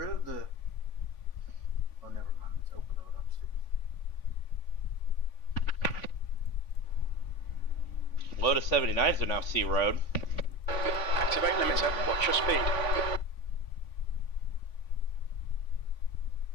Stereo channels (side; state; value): right; late; 3.5 ms